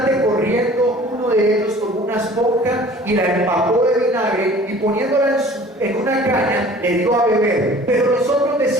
corriendo, uno de ellos tomó una esponja y la empapó de vinagre y poniéndola en una caña le dio a beber. Pero los otros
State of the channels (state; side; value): normal; both; correlation 0.48